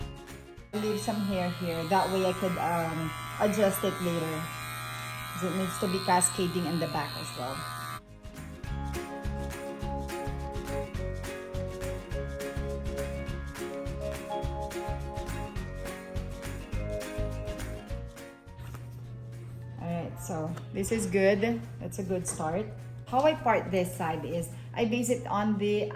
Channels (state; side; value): identical; both; correlation 1.00